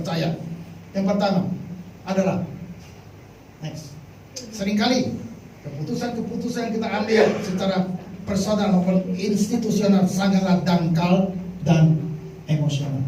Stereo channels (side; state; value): both; identical; correlation 1.00